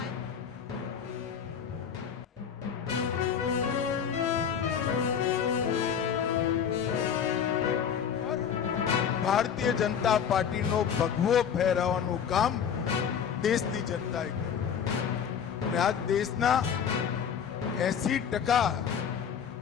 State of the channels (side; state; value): right; quieter; 7.8 dB